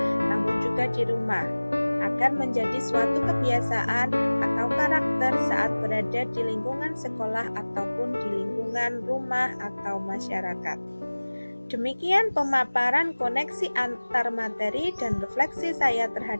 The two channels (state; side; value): inverted; both; correlation -1.00